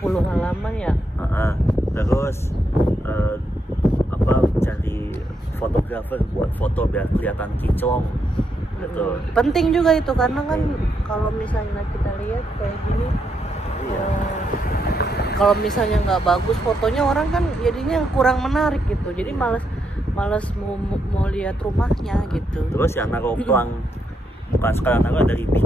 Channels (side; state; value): both; normal; correlation 0.79